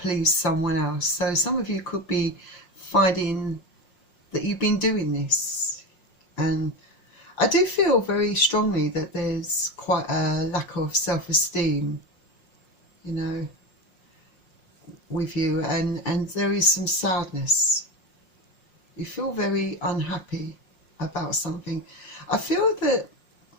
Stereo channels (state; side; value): late; right; 5.6 ms